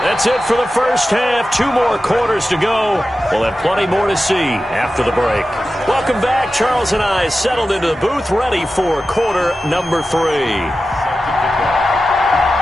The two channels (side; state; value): both; normal; correlation 0.93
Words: That's it for the first half. 2 more quarters to go. We'll have plenty more to see after the break. Welcome back. Charles and I settled into the booth, ready for quarter number 3.